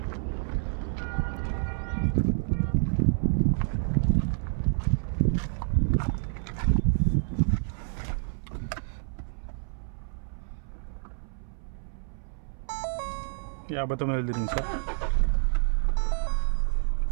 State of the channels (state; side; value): silent; left; 59 dB below the other